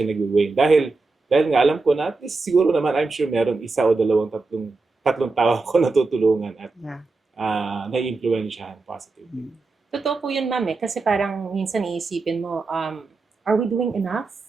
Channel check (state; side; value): quieter; left; 3.7 dB